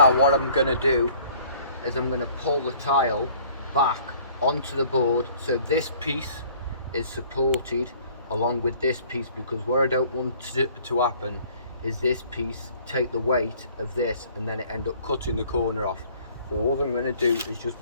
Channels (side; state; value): both; inverted; correlation -0.55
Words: what I'm going to do is I'm going to pull the tile back onto the board so this piece is supported along with this piece, because what I don't want to happen is this piece take the weight of this and then it end up cutting the corner off. So all I'm going to do is just